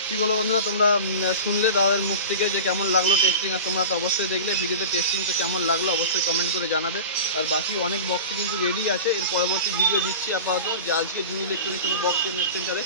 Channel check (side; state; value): both; inverted; correlation -0.32